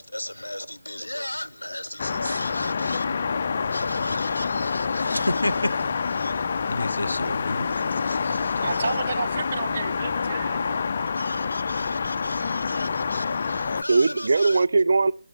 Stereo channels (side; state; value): both; inverted; correlation -0.89